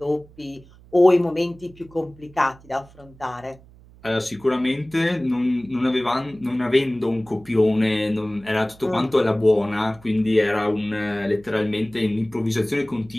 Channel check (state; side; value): noise; right; hum, 24 dB below the sound